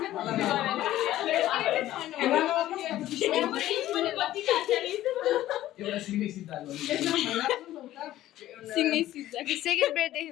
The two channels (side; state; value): right; quieter; 14.2 dB